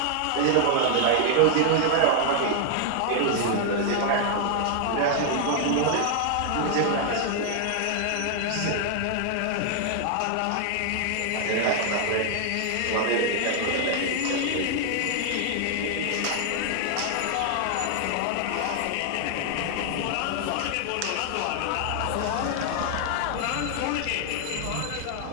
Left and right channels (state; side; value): different; both; correlation 0.00